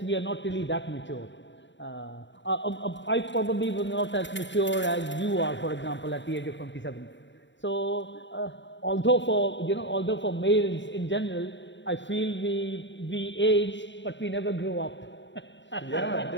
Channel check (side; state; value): right; late; 0.53 ms